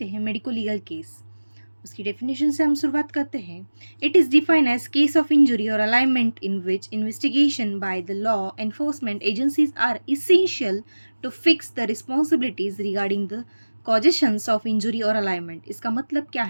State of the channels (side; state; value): both; inverted; correlation -1.00